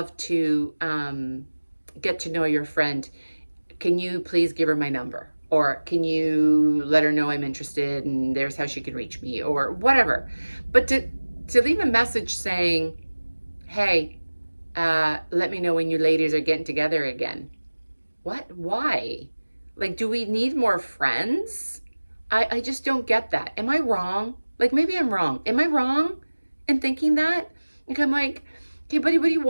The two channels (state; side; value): inverted; both; correlation -1.00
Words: to get to know your friend. Can you please give her my number? Or can you let her know I'm interested and there's how she can reach me, or whatever. But to leave a message saying, hey, let me know when you ladies are getting together again. What? Why? Like, do we need more friends? I just don't get that. Am I wrong? Like, maybe I'm wrong. Am I wrong in thinking that? Like, I'm like, okay, buddy, what do you